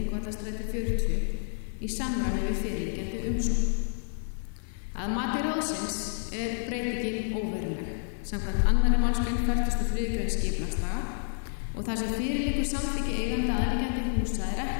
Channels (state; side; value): silent; right; 58 dB below the other